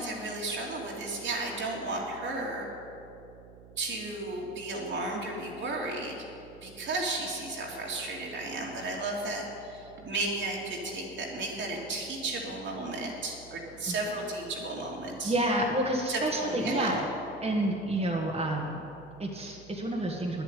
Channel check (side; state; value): right; noise; hum, 19 dB below the sound